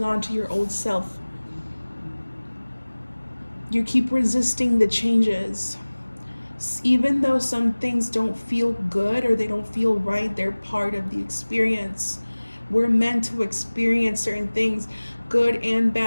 on to your old self. You keep resisting the changes. Even though some things don't feel good or they don't feel right, they're part of the experience. We're meant to experience certain things, good and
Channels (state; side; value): inverted; both; correlation -1.00